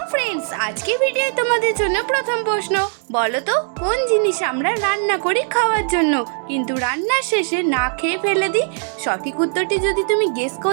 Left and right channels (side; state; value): left; silent; 57 dB below the other